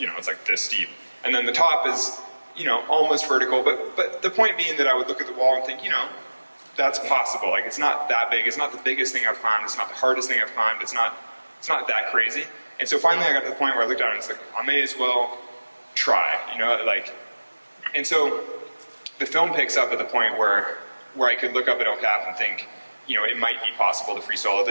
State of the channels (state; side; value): inverted; both; correlation -1.00